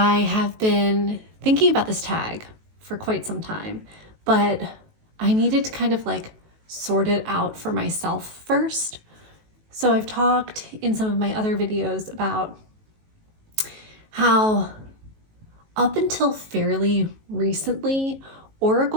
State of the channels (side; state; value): left; late; 19 ms